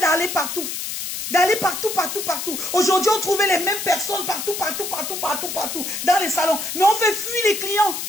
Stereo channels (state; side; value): noise; left; hiss, 5 dB below the sound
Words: partout. Partout. Aujourd'hui, on trouvait les mêmes personnes partout, dans les salons. Mais on fait fuir les clients.